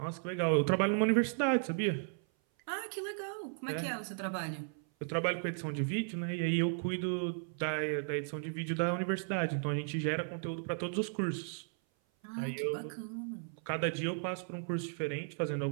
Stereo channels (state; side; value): silent; left; 54 dB below the other